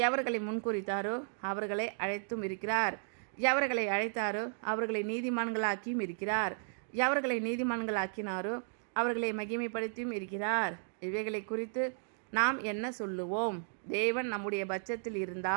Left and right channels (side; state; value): left; silent; digital silence